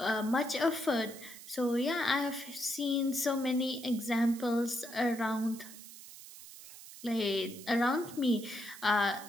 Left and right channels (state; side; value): noise; right; hiss, 16 dB below the sound